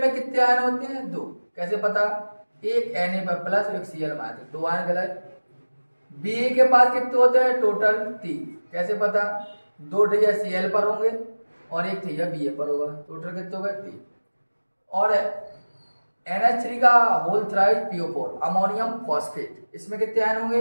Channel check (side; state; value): both; inverted; correlation -1.00